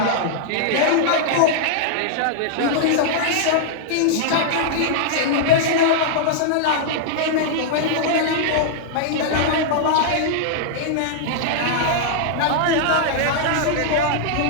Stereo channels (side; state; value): both; different; correlation -0.01